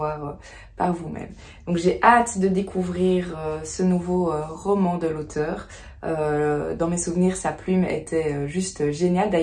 par vous-même. Donc j'ai hâte de découvrir ce nouveau roman de l'auteur. Dans mes souvenirs, sa plume était juste géniale.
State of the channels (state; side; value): identical; both; correlation 1.00